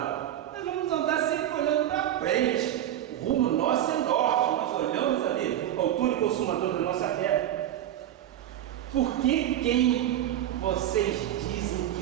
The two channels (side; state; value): left; quieter; 11.8 dB